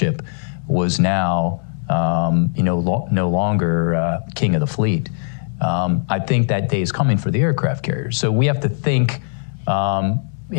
was now no longer king of the fleet. I think that day is coming for the aircraft carriers. So we have to think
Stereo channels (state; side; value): silent; right; digital silence